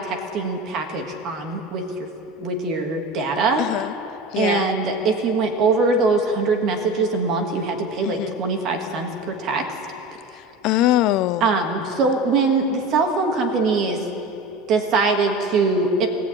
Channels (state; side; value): normal; both; correlation 0.31